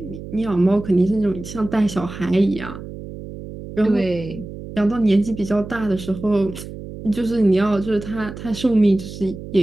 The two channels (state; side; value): noise; right; hum, 12 dB below the sound